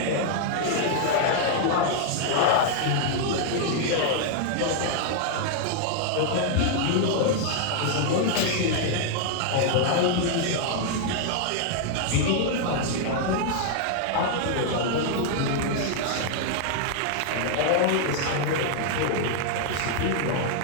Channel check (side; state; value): both; different; correlation 0.00